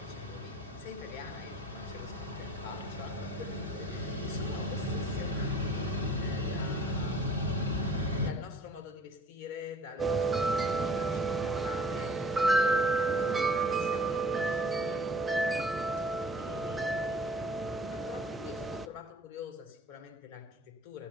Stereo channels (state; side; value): normal; both; correlation 0.50